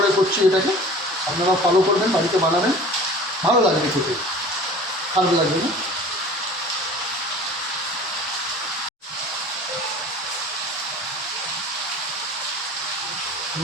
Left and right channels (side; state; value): both; normal; correlation 0.42